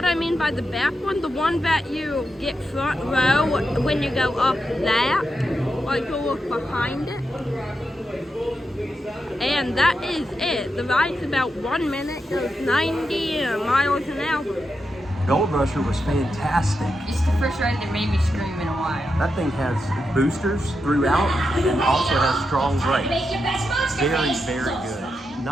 I mean by the back one, the one that you get front row when you go up that, like you look behind it. And that is it. The ride's about 1 minute, goes 90 miles an hour. Gold Rusher was fantastic. It's the first ride that made me scream in a while. That thing has boosters throughout and also has strong brakes. Very, very good.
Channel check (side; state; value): both; normal; correlation 0.86